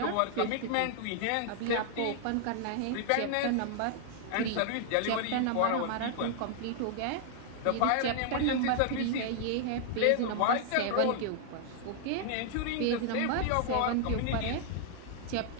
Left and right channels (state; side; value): different; both; correlation 0.00